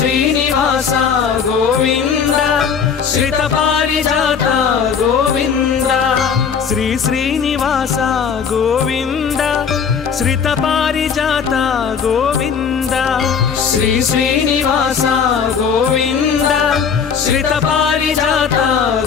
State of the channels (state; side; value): quieter; right; 6.7 dB